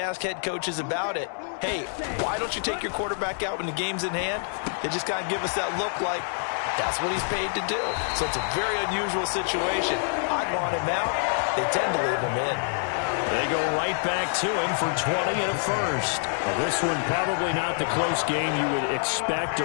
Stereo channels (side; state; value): right; silent; 60 dB below the other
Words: head coaches about it, hey, why don't you take your quarterback out when the game's in hand? They just kind of give us that look like, That's what he's paid to do. So it's a very unusual situation. I'd want him out. They tend to leave him in. They go right back to him for 20 and a first. Well, this one probably not the close game you would expect